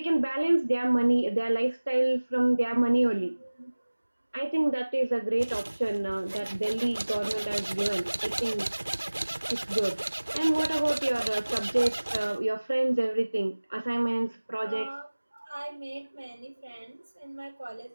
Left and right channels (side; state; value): both; inverted; correlation -1.00